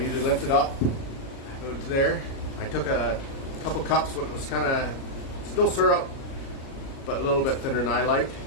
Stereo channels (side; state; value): right; late; 37 ms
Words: lift it up, go to there. I took a couple cups when it was kind of still syrup, but a little bit thinner than I like.